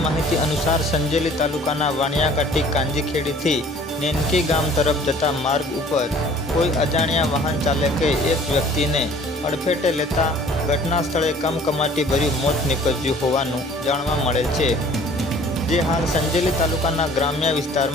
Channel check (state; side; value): normal; both; correlation 0.52